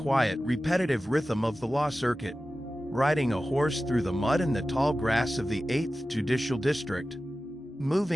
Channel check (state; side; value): normal; both; correlation 0.95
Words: repetitive rhythm of the law circuit, riding a horse through the mud and the tall grass of the 8th Judicial District,